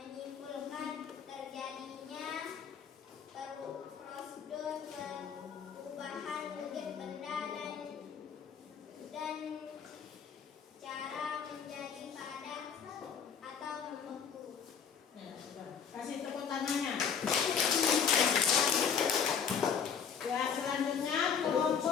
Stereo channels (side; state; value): right; quieter; 7.0 dB